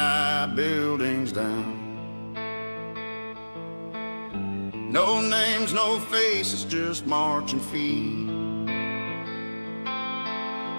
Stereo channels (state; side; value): inverted; both; correlation -1.00